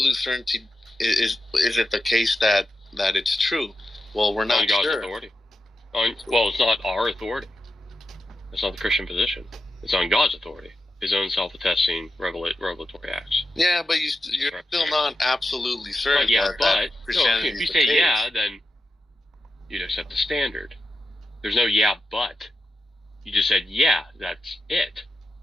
certainty is it the case that it's true? Well, we're not God's sure. Authority. Well, it's not our authority. It's not the Christian position. It's on God's authority. His own self-attesting revelatory acts. Yeah, but you're still not absolutely certain. But if you say yeah, then you'd accept the standard. There's no yeah, but. You just said yeah, that's it.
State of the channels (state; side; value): normal; both; correlation 0.89